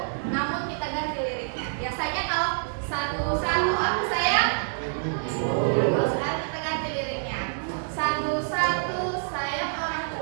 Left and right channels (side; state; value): left; silent; digital silence